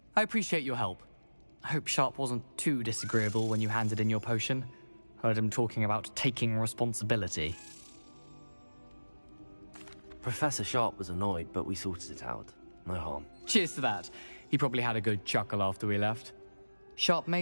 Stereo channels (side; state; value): both; inverted; correlation -1.00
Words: I appreciate your help. I hope Sharp wasn't too disagreeable when you handed in your potion. Heard him talking about taking responsibility. Professor Sharp was annoyed, but we sorted it out. No harm. Cheers to that. He probably had a good chuckle after we left. Sharp may